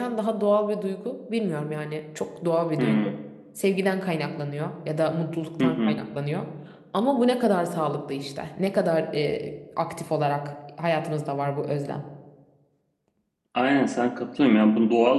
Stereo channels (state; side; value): identical; both; correlation 1.00